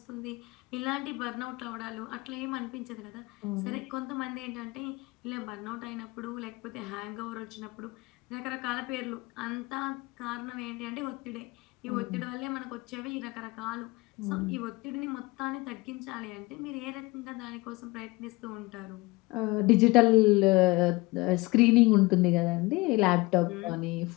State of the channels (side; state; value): right; quieter; 22.9 dB